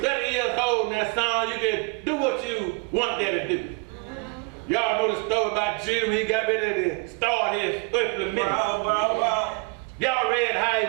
years old now, son, you can do what you want that to do. Y'all know the story about Jesus when he got ready to start his earthly ministry. Y'all read how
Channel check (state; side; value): quieter; left; 31.4 dB